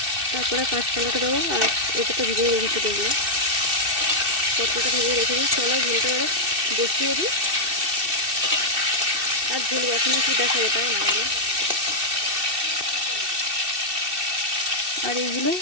তারপরে কাঁচকলাটা দেবো। আর এটা তো ভিজিয়ে রেখেছি, দেখবো পটলটা ভিজিয়ে রেখেছি। চলো ঝোলটা এবার বসিয়ে দিই, আর ঝোল বসানো কি দেখাবো, তাই না? আর এইগুলো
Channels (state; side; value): late; left; 2.6 ms